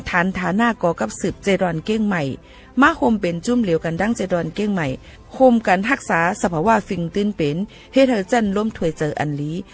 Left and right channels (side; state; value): both; identical; correlation 1.00